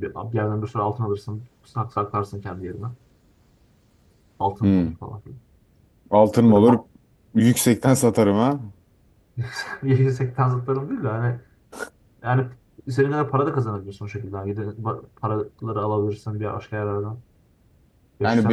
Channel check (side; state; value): both; identical; correlation 1.00